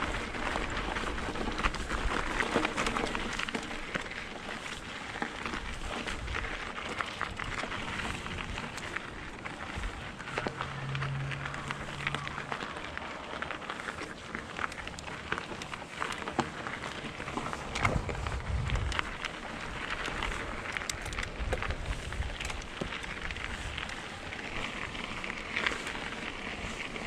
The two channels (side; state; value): both; identical; correlation 1.00